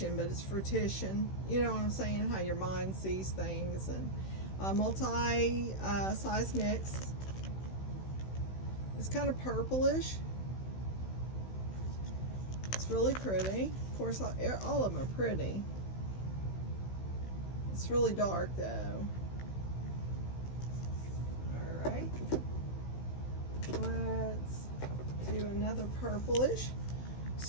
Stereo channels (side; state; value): right; late; 16 ms